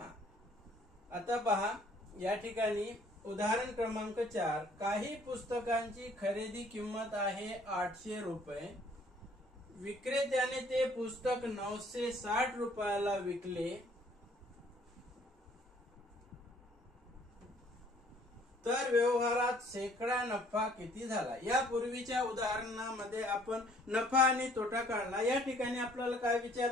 आता पहा, या ठिकाणी उदाहरण क्रमांक 4. काही पुस्तकांची खरेदी किंमत आहे 800 रुपये. विक्रेत्याने ते पुस्तक 960 रुपयाला विकले. तर व्यवहारात शेकडा नफा किती झाला. या पूर्वीच्या उदाहरणामध्ये आपण नफा आणि तोटा काढला. या ठिकाणी आपल्याला काय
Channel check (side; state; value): both; normal; correlation 0.60